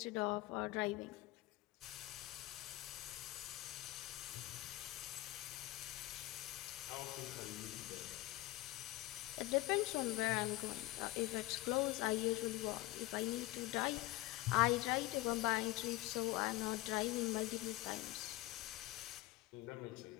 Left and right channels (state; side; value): quieter; right; 18.2 dB